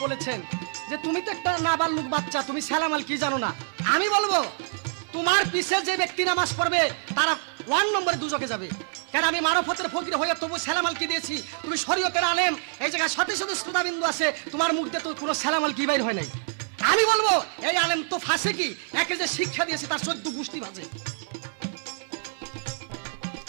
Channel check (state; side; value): silent; left; 61 dB below the other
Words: বলেছেন যে তুমি তো একটা নাবালক বাচ্চা, তুমি সালামাল কি জানো না। আমি বলবো তোমার পিছে যে ব্যক্তি নামাজ পড়বে তারা 1 নম্বরে দুজকে যাবে। কারণ আমি মারফতের ফকির হয়ে তবু সালামাল কি দিয়েছি, তুমি শরীয়তের আলেম, এই জায়গায় শত শত শ্রোতাবিন্দু আছে, তোমার মুখ দিয়ে তো কোনো সালামাল কি বাইর হয় নাই। আমি বলবো এই আলেম তো ফাঁসে কি, একে যে শিক্ষা দিয়েছে তার 14 গোষ্ঠী বাজে।